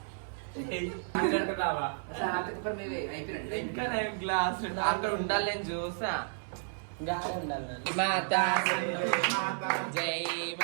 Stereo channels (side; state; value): left; silent; digital silence